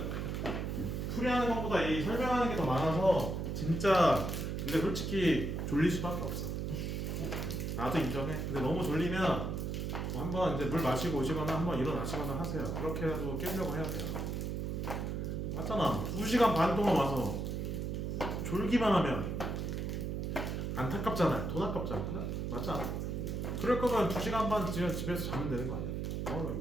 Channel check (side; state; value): right; noise; hum, 2 dB below the sound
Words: 풀이하는 것보다 이 설명하는 게 더 많아서 진짜 근데 솔직히 졸릴 수밖에 없어. 나도 인정해. 근데 너무 졸리면 뭐 한번 이제 물 마시고 오시거나 한번 일어나시거나 하세요. 그렇게라도 깨려고 해야 돼요. 맞잖아. 2시간 반 동안 와서 졸기만 하면 안타깝잖아요. 돈 아깝잖아. 그래? 맞지 않아? 그럴 거면 2시간 반 집에서 자면 되는 거 아니야?